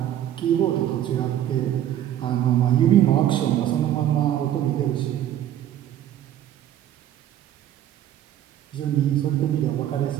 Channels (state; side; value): quieter; left; 11.6 dB